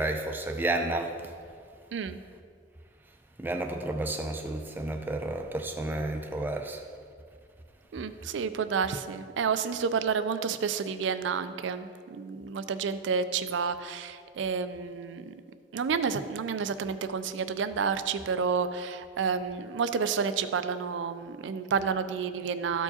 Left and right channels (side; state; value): left; quieter; 4.6 dB